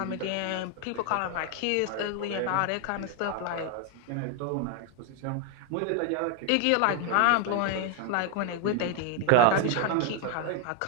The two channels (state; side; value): different; both; correlation 0.01